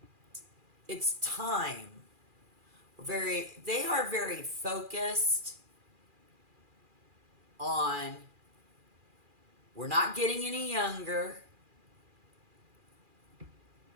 it's time. They are very focused on, we're not getting any younger,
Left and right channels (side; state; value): left; late; 2.4 ms